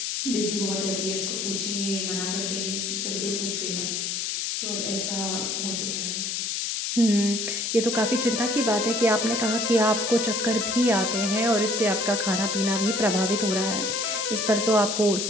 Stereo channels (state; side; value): noise; left; hiss, 1 dB below the sound